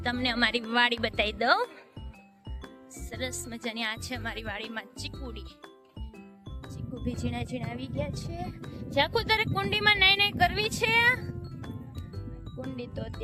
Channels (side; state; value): both; identical; correlation 1.00